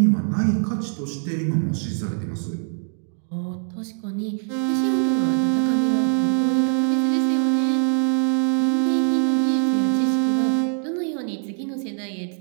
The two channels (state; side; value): silent; left; 56 dB below the other